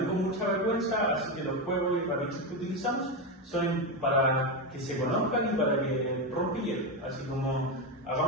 con mucha vergüenza, así que los juegos y herramientas que utilizamos son para que se conozcan y para que rompan hielo, así como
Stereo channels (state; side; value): normal; both; correlation 0.11